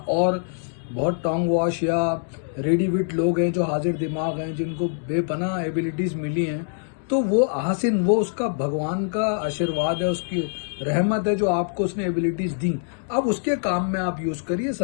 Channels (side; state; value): right; silent; 62 dB below the other